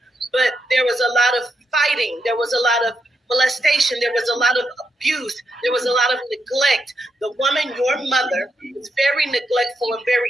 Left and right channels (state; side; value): normal; both; correlation 0.82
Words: But there was a lot of fighting. There was a lot of molestation. There was a lot of abuse. There was a lot of neglect. The woman, your mother, was very neglectful and very